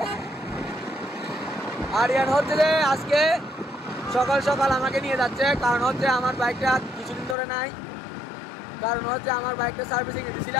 আরিয়ান হচ্ছে যে আজকে সকাল সকাল আমাকে নিয়ে যাচ্ছে, কারণ হচ্ছে আমার বাইকটা কিছুদিন ধরে নাই, কারণ হচ্ছে আমার বাইকটা সার্ভিসিং এ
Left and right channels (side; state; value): right; drops out; at 7.4 s